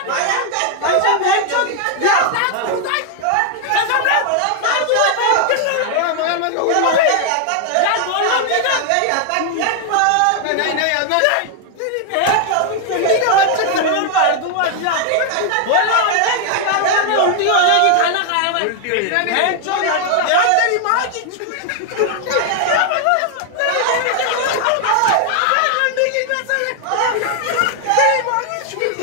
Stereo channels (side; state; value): both; different; correlation 0.00